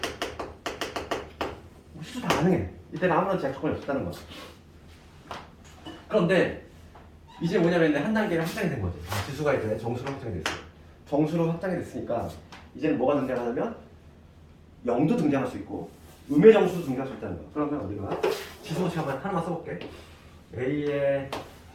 시수 다 가능해. 이때는 아무런 제약 조건이 없었다는 거야. 그런데 이제 뭐냐면 한 단계를 확장이 된 거지. 지수가 이제 정수로 확장이 됐어. 정수로 확장이 됐으니까 이제는 뭐가 등장하냐면 0도 등장할 수 있고 음의 정수도 등장할 수 있다는 거야. 그러면 우리가 지수 법칙 하나만 써볼게. A의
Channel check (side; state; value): both; identical; correlation 1.00